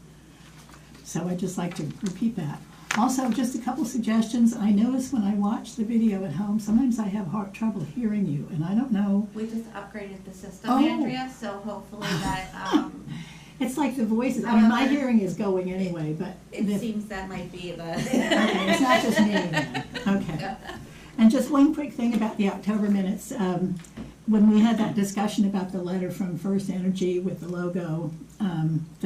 So I'd just like to repeat that. Also, just a couple suggestions. I notice when I watch the video at home, sometimes I have trouble hearing you, and I don't know. We just upgraded the system, Oh. Andrea, so hopefully that, It's like the voices. I mean, my hearing is going anyway, but it seems that might be the. Okay, it's not just me then. Okay. And just one quick thing about the October minutes. When we had that discussion about the letter from First Energy with the logo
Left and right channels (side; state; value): both; identical; correlation 1.00